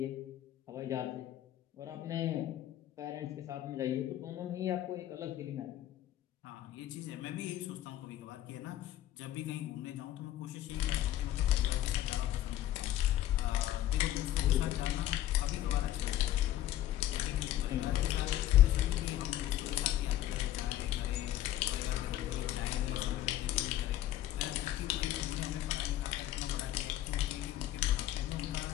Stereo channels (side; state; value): right; quieter; 13.2 dB